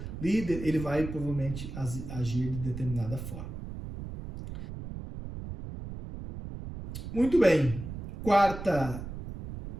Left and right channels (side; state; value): right; noise; rumble, 9 dB below the sound